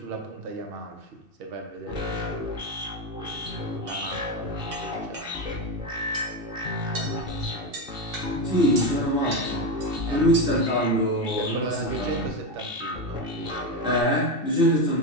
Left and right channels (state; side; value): late; left; 2.7 ms